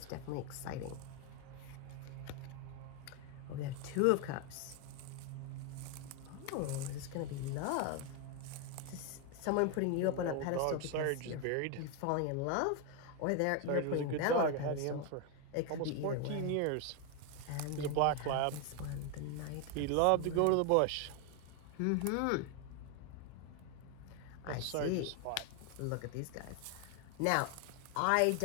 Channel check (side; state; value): both; different; correlation 0.01